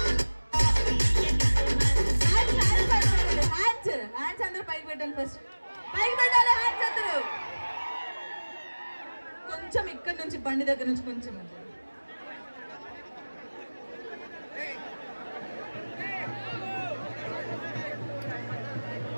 కొంచెం ఇక్కడ నుంచి బండి దగ్గర నుంచి కొంచెం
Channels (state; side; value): inverted; both; correlation -1.00